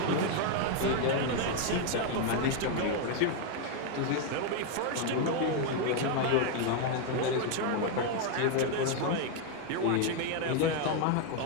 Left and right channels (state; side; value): different; both; correlation 0.01